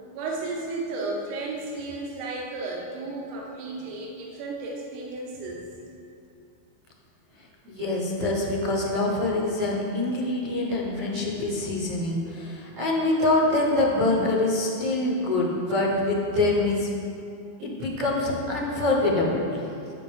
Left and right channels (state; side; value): late; left; 24 ms